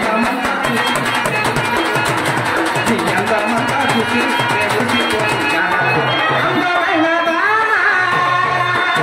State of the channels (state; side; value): identical; both; correlation 1.00